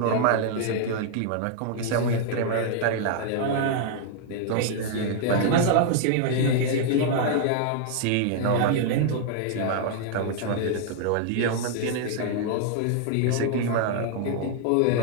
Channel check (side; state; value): both; different; correlation 0.00